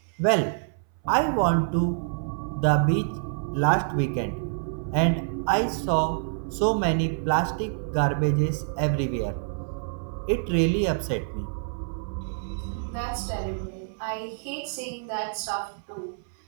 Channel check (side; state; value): left; silent; 60 dB below the other